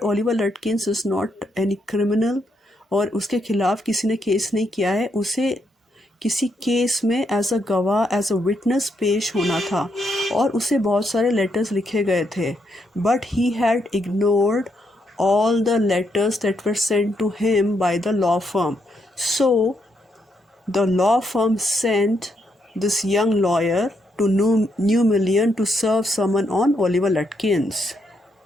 Oliver Lutkins is not any criminal, और उसके खिलाफ किसी ने केस नहीं किया है। उसे किसी केस में एज अ गवाह, एज अ विटनेस पेश होना था, और उसे बहुत सारे लेटर्स लिखे गए थे। But he had ignored all the letters that were sent to him by the law firm. So the law firm sent this young lawyer to New Million to serve someone on Oliver Lutkins.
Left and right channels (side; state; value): both; normal; correlation 0.78